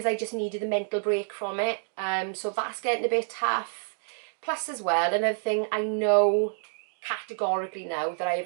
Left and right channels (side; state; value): left; silent; digital silence